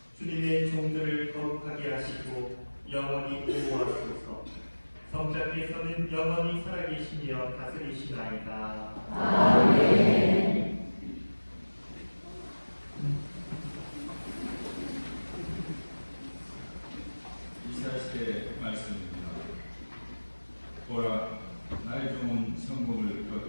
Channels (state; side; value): inverted; both; correlation -1.00